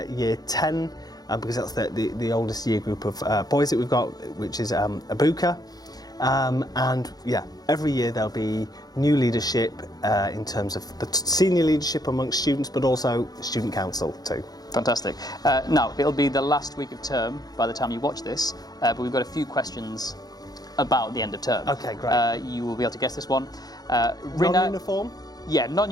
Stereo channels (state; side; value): late; right; 0.19 ms